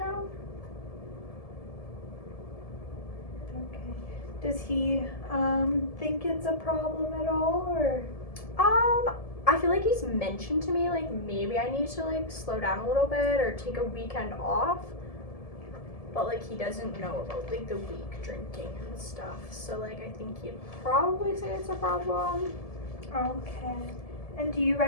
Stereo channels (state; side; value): late; right; 1.7 ms